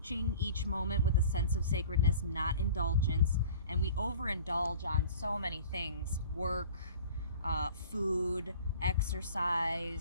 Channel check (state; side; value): inverted; both; correlation -0.44